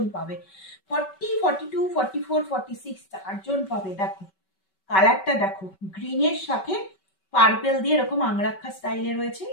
পাবে। 40, 42, 44, 46 চারজন পাবে। দেখো কালারটা দেখো, গ্রিনের সাথে পার্পেল দিয়ে এরকম আংরাক্ষা স্টাইলে রয়েছে।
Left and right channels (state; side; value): late; right; 5.2 ms